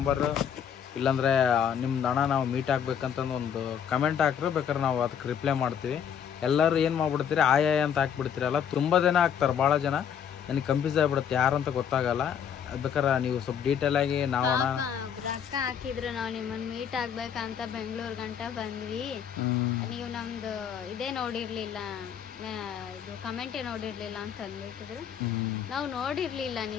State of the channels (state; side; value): quieter; right; 8.2 dB